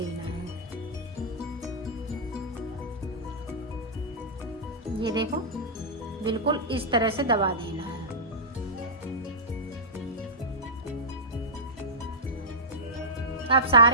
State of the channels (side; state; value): both; normal; correlation -0.14